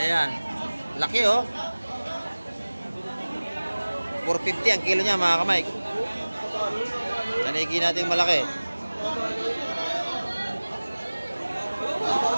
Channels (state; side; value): inverted; both; correlation -1.00